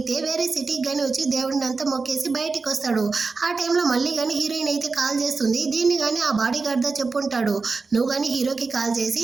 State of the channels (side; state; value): left; quieter; 4.3 dB